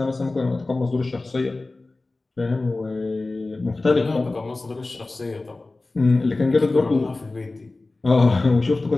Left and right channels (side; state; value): right; quieter; 3.2 dB